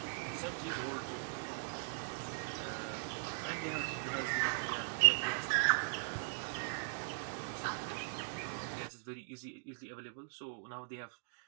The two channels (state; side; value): silent; left; digital silence